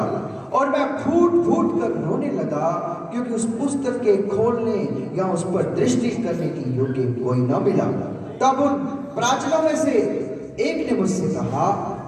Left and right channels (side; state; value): both; identical; correlation 1.00